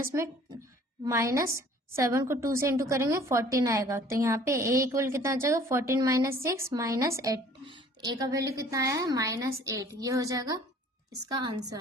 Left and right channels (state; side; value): normal; both; correlation 0.52